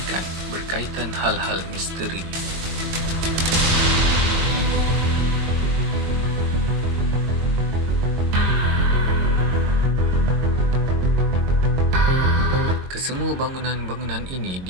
berkaitan hal-hal misteri. Kesemua bangunan-bangunan ini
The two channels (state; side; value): late; left; 22 ms